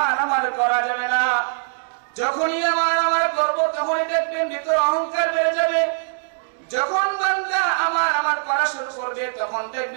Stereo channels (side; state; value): left; silent; 64 dB below the other